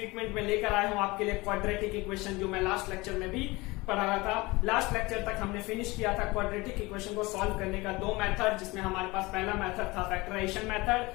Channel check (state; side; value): quieter; right; 22.6 dB